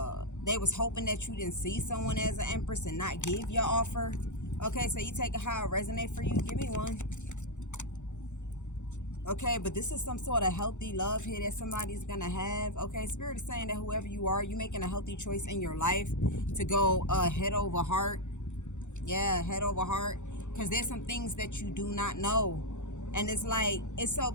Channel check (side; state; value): right; late; 0.84 ms